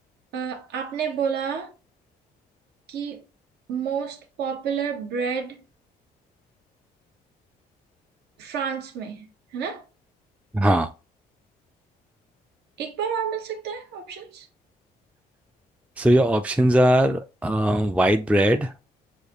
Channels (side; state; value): both; normal; correlation 0.81